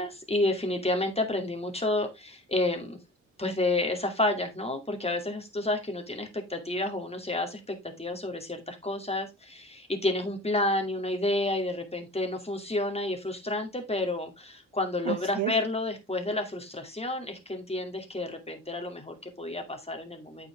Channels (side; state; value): both; normal; correlation 0.39